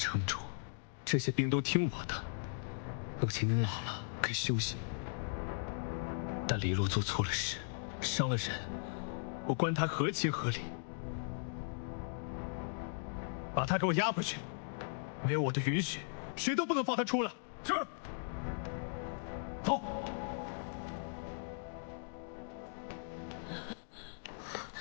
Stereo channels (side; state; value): right; silent; digital silence